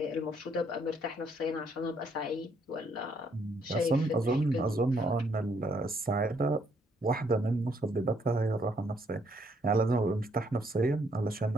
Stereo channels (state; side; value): normal; both; correlation 0.70